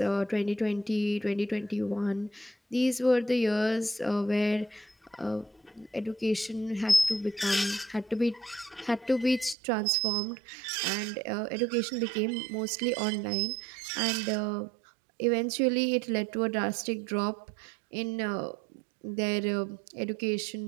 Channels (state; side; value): drops out; left; at 9.6 s